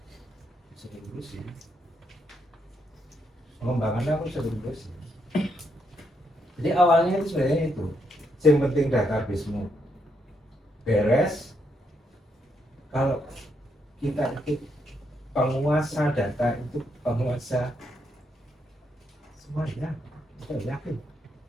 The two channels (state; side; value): normal; both; correlation 0.78